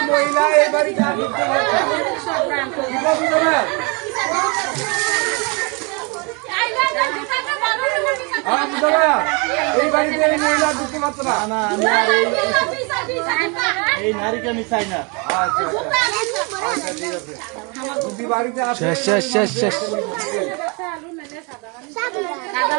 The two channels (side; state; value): left; quieter; 31.6 dB